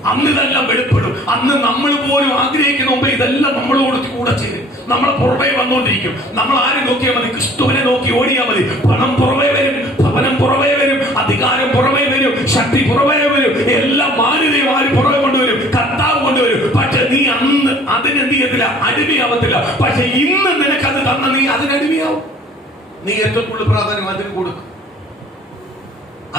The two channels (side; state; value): both; normal; correlation 0.52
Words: അന്ന് ഇതെല്ലാം വെളിപ്പെടും. അന്ന് നമ്മൾ പോലും ആഗ്രഹിക്കുന്ന മുമ്പ് ഇതെല്ലാം നമ്മളോട് കൂടെ ചെയ്യും. നമ്മളെ പുറമേ വന്നുകൊണ്ടിരിക്കും. നമ്മൾ ആരും നോക്കിയാൽ മതി, ക്രിസ്തുവിനെ നോക്കി ഓടിയാൽ മതി. പണം പുറമേ വരും, ഭവനം പുറമേ വരും, അധികാരം പുറമേ വരും, ശക്തി പുറമേ വരും, എല്ലാം മാന്യതയും ആരും പുറമെ കൊണ്ടുവരും, കർത്താവ് കൊണ്ടുവരും. പക്ഷെ നീ അന്ന് അതിനെന്ത് ചെയ്യത്തില്ല, അടിമയാവത്തില്ല. പക്ഷെ ഇന്ന് നിനക്കത് തന്ന നീ അതിനടിമയാവും. നീ ഏറ്റവും കൂടുതൽ പ്രാധാന്യം അതിന് കൊടുക്കും,